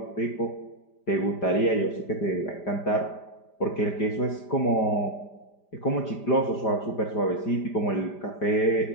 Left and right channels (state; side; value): late; right; 5.0 ms